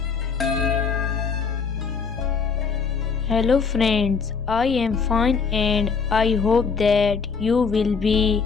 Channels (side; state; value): right; quieter; 5.5 dB